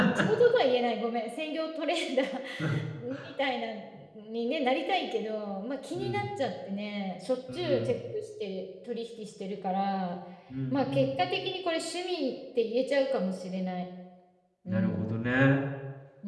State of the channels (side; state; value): both; identical; correlation 1.00